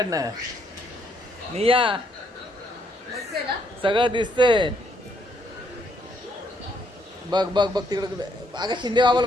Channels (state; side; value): normal; both; correlation 0.72